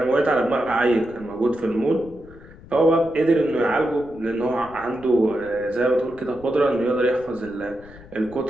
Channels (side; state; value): left; noise; rumble, 21 dB below the sound